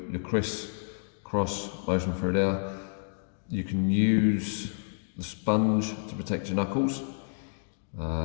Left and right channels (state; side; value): silent; right; digital silence